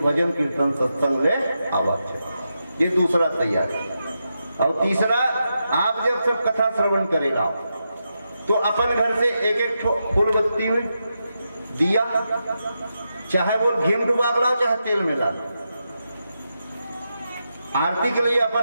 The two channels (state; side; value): inverted; both; correlation -0.87